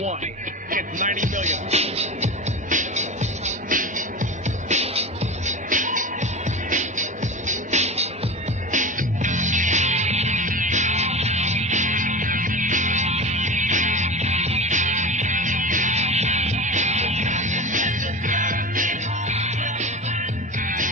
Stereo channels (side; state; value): both; normal; correlation 0.28